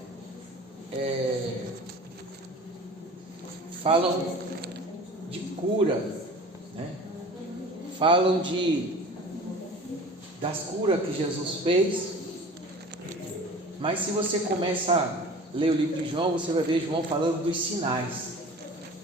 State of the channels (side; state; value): both; normal; correlation 0.41